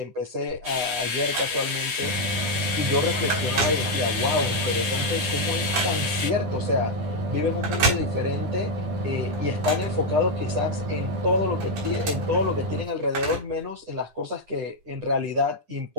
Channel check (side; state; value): left; late; 9.9 ms